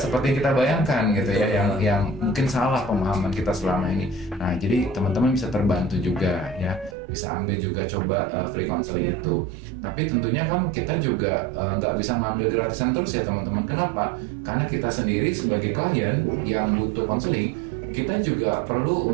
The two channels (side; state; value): left; drops out; at 7.0 s